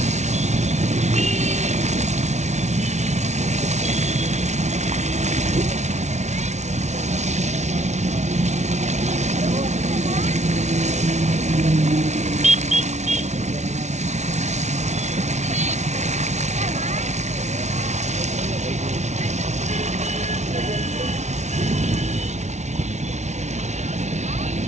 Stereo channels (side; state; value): left; late; 0.33 ms